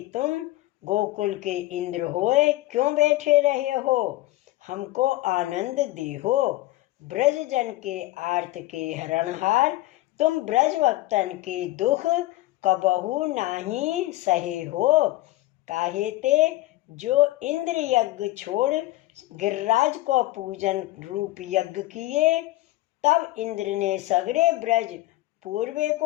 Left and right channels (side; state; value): right; quieter; 17.5 dB